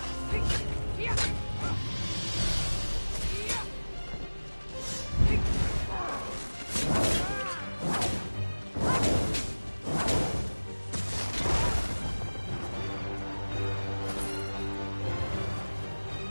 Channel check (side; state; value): both; inverted; correlation -1.00